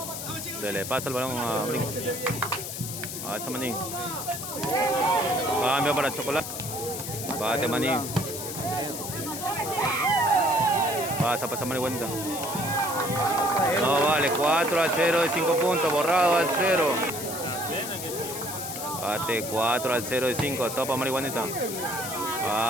Se le pasa el balón a brinca. Alza maní. Cambio para chocolate. Bate maní. Pasa marihuanita. No vale, 4 al 0 de 5 puntos, borrado al 0. Bate 4 al 0 de 5, topa marihuanita.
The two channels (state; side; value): noise; left; hiss, 7 dB below the sound